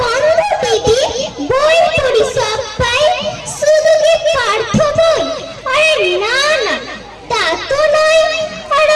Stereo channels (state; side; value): identical; both; correlation 1.00